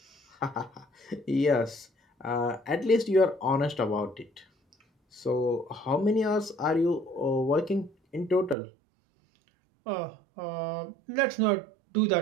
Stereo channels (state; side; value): drops out; left; at 8.6 s